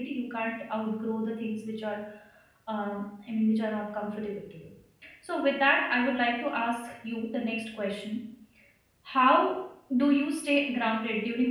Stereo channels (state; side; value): identical; both; correlation 1.00